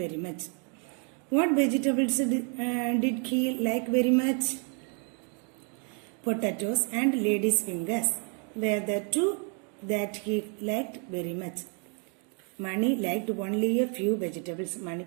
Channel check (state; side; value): quieter; left; 39.4 dB